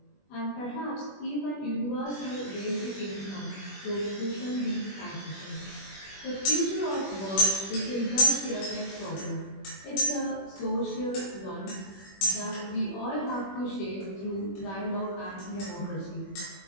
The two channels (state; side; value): late; right; 21 ms